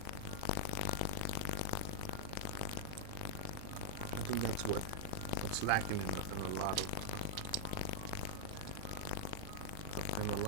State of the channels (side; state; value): both; different; correlation -0.02